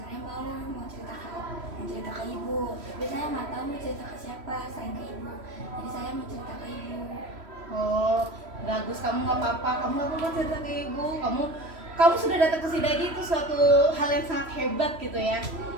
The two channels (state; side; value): late; left; 3.1 ms